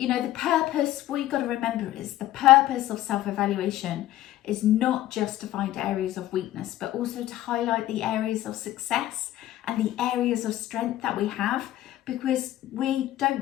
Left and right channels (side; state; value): right; quieter; 14.1 dB